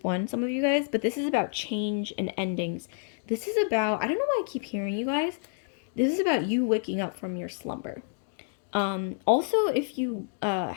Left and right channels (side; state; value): right; silent; digital silence